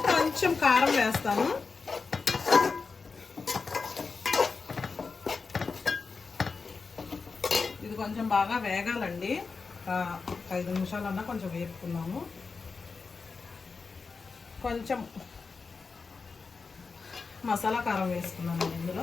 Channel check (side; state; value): right; quieter; 4.6 dB